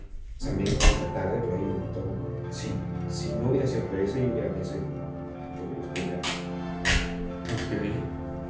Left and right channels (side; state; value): both; identical; correlation 1.00